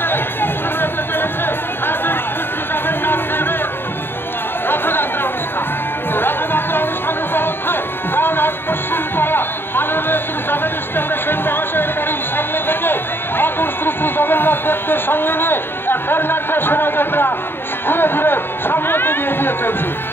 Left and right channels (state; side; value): late; right; 0.11 ms